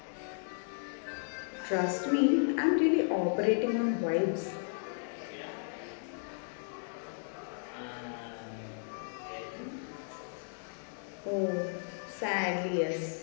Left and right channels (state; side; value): silent; right; 55 dB below the other